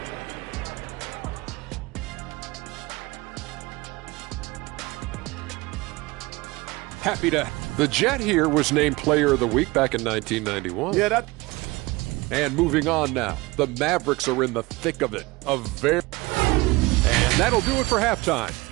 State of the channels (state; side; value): quieter; left; 22.4 dB